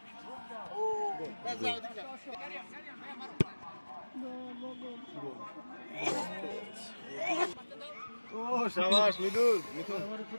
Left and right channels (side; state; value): both; inverted; correlation -1.00